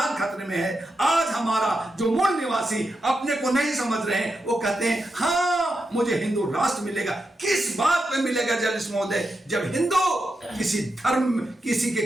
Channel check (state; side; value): normal; both; correlation 0.87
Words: खतरे में है। आज हमारा जो मूल निवासी अपने को नहीं समझ रहे हैं, वो कहते हैं हाँ मुझे हिंदू राष्ट्र मिलेगा। किस बात पे मिलेगा जर्नलिस्ट महोदय, जब हिंदू किसी धर्म किसी